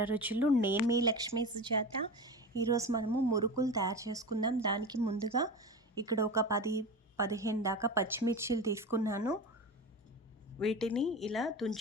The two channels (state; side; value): normal; both; correlation 0.27